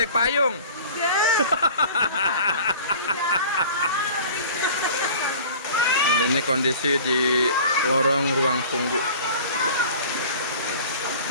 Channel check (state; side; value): inverted; both; correlation -0.43